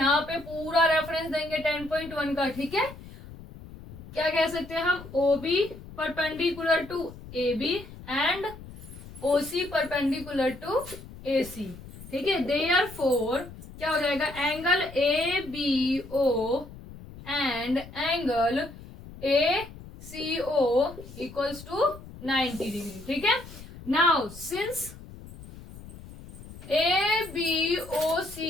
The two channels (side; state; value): left; noise; rumble, 16 dB below the sound